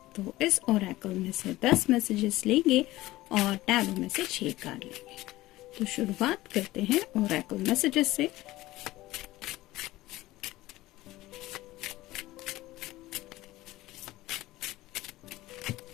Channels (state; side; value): quieter; right; 17.5 dB